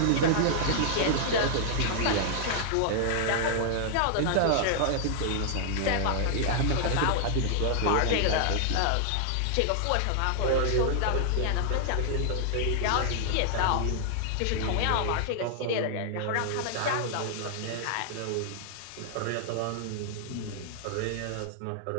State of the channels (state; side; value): different; both; correlation 0.00